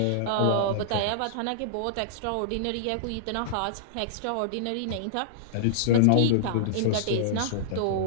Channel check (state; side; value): different; both; correlation -0.02